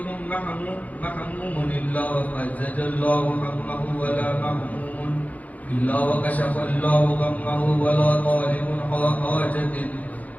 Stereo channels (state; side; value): late; right; 0.075 ms